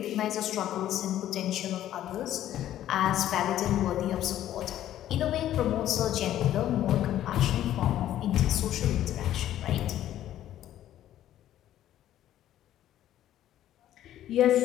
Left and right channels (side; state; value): right; quieter; 12.3 dB